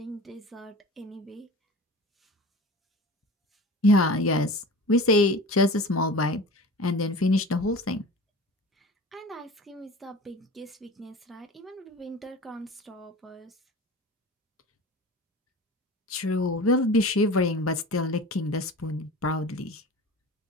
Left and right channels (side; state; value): both; normal; correlation 0.36